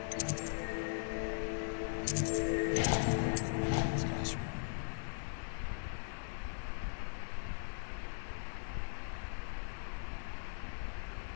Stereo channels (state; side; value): silent; right; digital silence